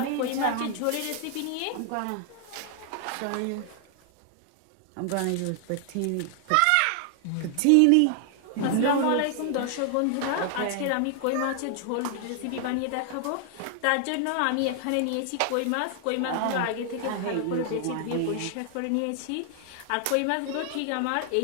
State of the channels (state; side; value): different; both; correlation 0.00